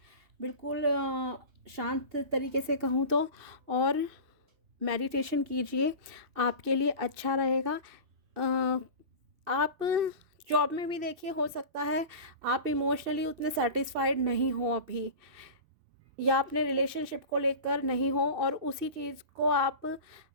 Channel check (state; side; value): late; left; 2.6 ms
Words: बिल्कुल शांत तरीके से कहूँ तो। और मेडिटेशन कीजिए, आपके लिए अच्छा रहेगा। आप जॉब में भी देखिए, हो सकता है आप इमोशनली उतने सेटिस्फाइड नहीं हो अभी, या अपने रिलेशनशिप को लेकर नहीं हो, और उसी चीज़ को आप